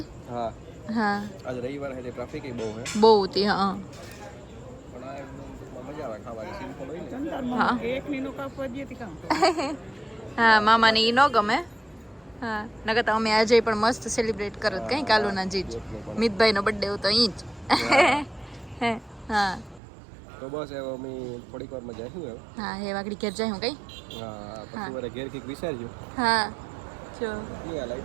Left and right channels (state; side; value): drops out; left; at 19.8 s